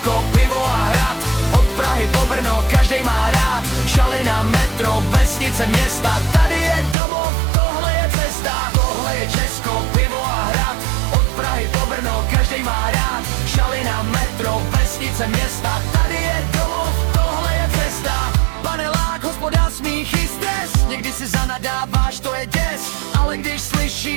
pivo a hrad, od Prahy po Brno, každej má rád. Šalina, metro, vesnice, města, tady je domov, tohle je cesta. Tohle je Česko, pivo a hrad, od Prahy po Brno, každej má rád. Šalina, metro, vesnice, města, tady je domov, tohle je cesta. Panelák, hospoda, smích i stres, někdy si zanadáváš, to je děs. Ale když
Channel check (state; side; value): drops out; left; at 7.0 s